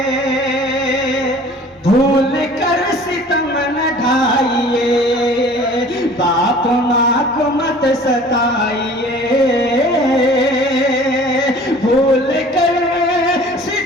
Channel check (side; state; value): both; normal; correlation 0.47